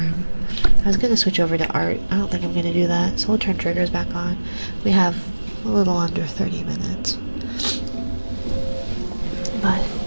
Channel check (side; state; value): both; inverted; correlation -1.00